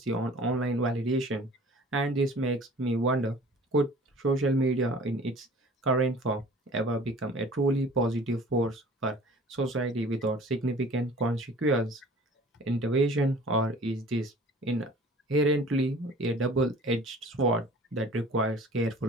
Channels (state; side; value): normal; both; correlation 0.47